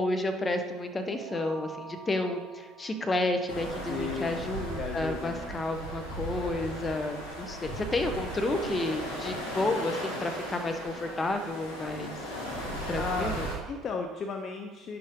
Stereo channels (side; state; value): both; normal; correlation 0.68